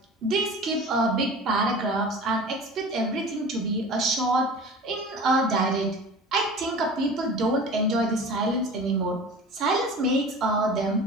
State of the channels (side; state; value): both; normal; correlation 0.38